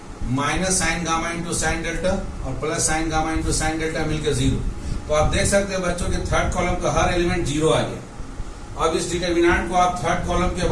Minus sine gamma into sine delta और plus sine gamma into sine delta मिलकर जीरो। तो आप देख सकते हैं बच्चों के थर्ड कॉलम का हर एलिमेंट जीरो आ गया। अब इस डिटरमिनेंट को आप थर्ड कॉलम के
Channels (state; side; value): identical; both; correlation 1.00